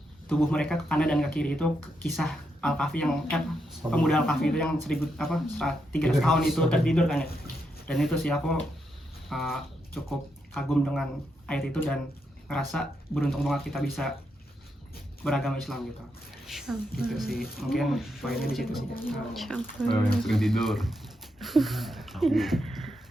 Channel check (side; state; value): both; normal; correlation 0.82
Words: tubuh mereka ke kanan dan ke kiri. Itu kisah Al-Kahfi yang pemuda Al-Kahfi itu yang 300 tahun itu tertidur kan ya. Dan itu sih aku cukup kagum dengan ayat itu dan ngerasa beruntung banget kita bisa beragama Islam gitu. Gitu sih, mungkin poinnya di situ sih. Yang sering tidur.